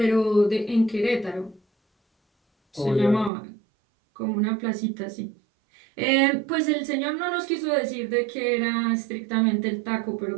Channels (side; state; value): left; drops out; at 3.3 s